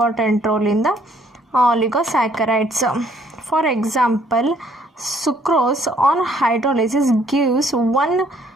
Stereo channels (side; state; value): both; normal; correlation 0.64